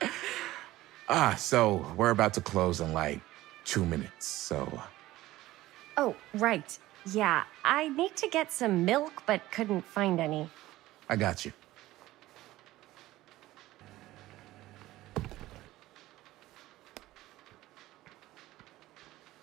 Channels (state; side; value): quieter; left; 16.6 dB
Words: So we're about to close in like 2 minutes, so... Oh, right. Yeah, I need to get some milk, but couldn't find any. I got you.